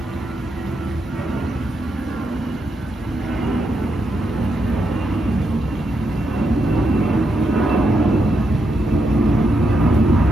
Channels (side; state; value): both; normal; correlation 0.81